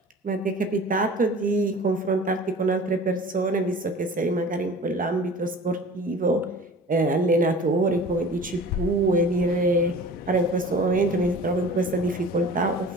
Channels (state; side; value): normal; both; correlation 0.41